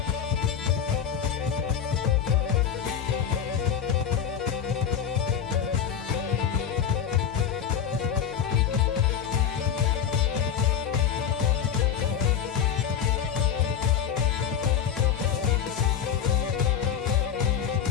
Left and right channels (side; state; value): right; quieter; 8.5 dB